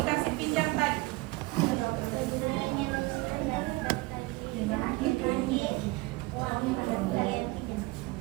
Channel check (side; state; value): left; quieter; 22.3 dB